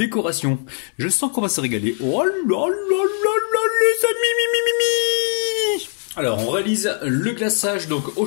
Je sens qu'on va se régaler. Oh là là là, les amis, Alors, on réalise le glaçage donc au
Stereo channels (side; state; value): right; silent; 58 dB below the other